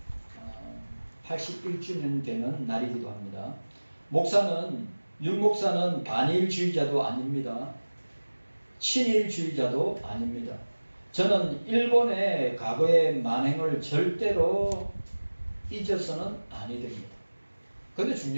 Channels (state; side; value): inverted; both; correlation -1.00